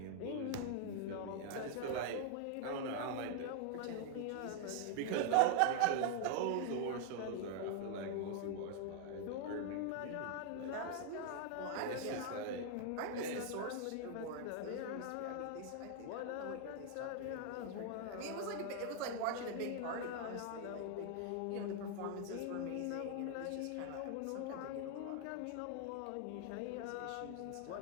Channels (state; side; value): different; both; correlation 0.00